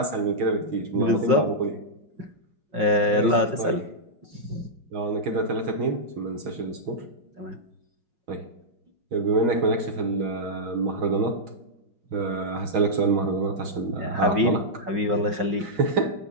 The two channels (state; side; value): late; left; 5.4 ms